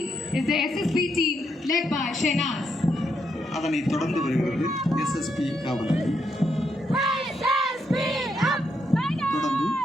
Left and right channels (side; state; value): both; normal; correlation 0.79